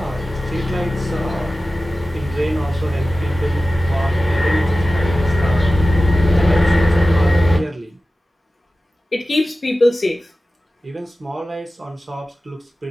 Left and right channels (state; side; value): normal; both; correlation 0.96